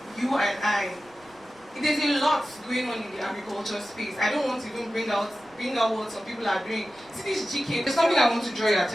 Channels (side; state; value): right; noise; rumble, 30 dB below the sound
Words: you and I. There's a lot going on in the agriculture space. I don't want to even bring out what some people are doing. See this GK, there's something I want to draw your